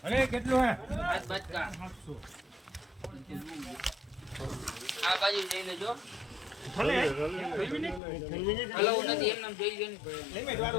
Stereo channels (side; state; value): right; drops out; at 8.0 s